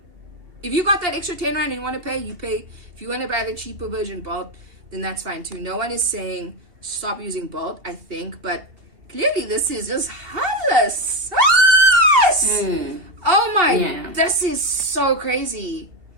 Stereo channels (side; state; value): left; late; 2.7 ms